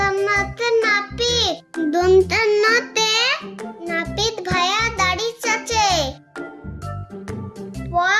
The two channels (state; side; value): identical; both; correlation 1.00